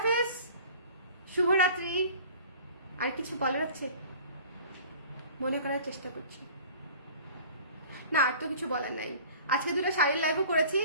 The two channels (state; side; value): inverted; both; correlation -0.44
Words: শুভরাত্রি। আর কিছু বলার আছে? মনে করার চেষ্টা করছি না, আর তো কিছু বলার নাই। আজকে দুটো শাড়ির লাইভও করেছি,